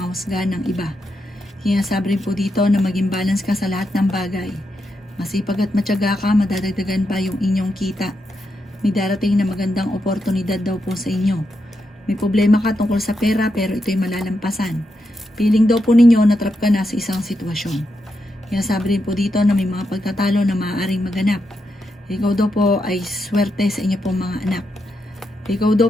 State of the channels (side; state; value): both; normal; correlation 0.84